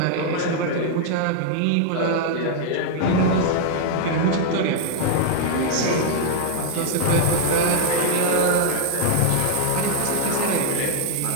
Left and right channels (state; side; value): different; both; correlation 0.00